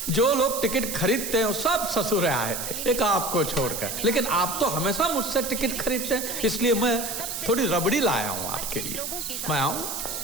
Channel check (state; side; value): noise; right; hiss, 5 dB below the sound